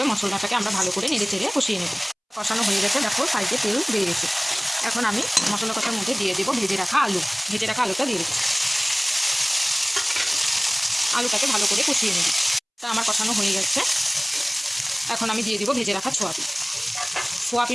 মশলাটাকে আমরা ভালো করে নেড়ে চেড়ে কষিয়ে নেব। কষানো হয়ে গেছে। দেখো সাইডে তেল বেরিয়ে গেছে। এখন আমি মশলা কষার মধ্যে দিয়ে দেবো ভেজে রাখা আলুটা দিয়ে দিচ্ছি। আলুটাকে ভালো করে কষিয়ে নেব। তা আমার কষানো হয়ে গেছে। এখন আমি দিয়ে দিব ভেজে রাখা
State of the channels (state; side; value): identical; both; correlation 1.00